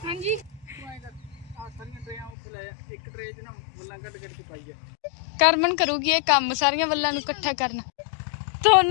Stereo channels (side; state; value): right; drops out; at 2.3 s